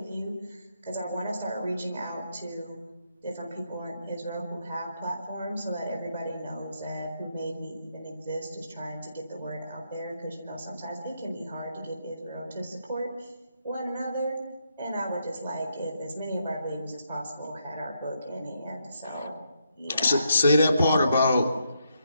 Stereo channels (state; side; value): inverted; both; correlation -0.79